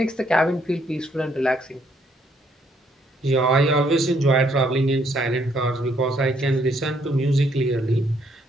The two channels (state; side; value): normal; both; correlation 0.69